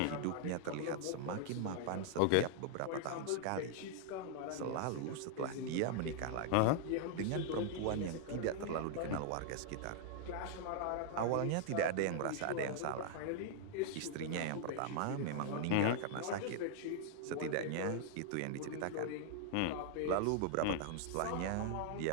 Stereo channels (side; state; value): both; different; correlation -0.01